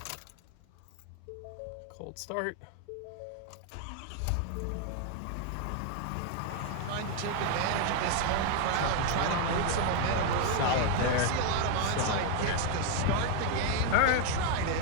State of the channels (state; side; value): different; both; correlation 0.01